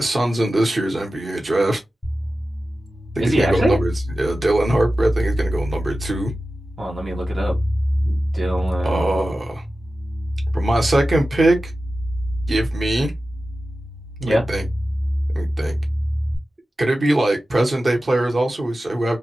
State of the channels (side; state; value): both; normal; correlation 0.94